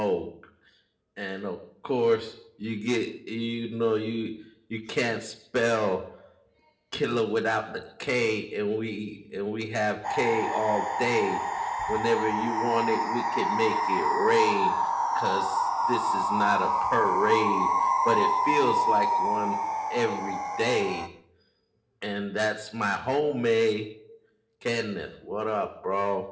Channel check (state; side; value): identical; both; correlation 1.00